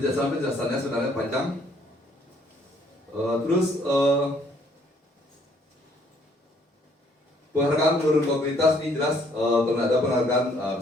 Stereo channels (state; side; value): normal; both; correlation 0.64